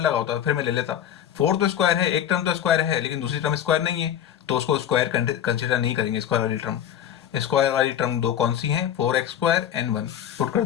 लगा होता फिर मैं ले लेता। 4 तो स्क्वायर है, एक टर्म तो स्क्वायर है, लेकिन दूसरी टर्म स्क्वायर नहीं है, तो उसको स्क्वायर कंसिडर नहीं करेंगे। स्क्वायर वाली टर्म 2 कौन सी है, 4x² एंड 1 पुट कर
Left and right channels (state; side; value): quieter; right; 10.0 dB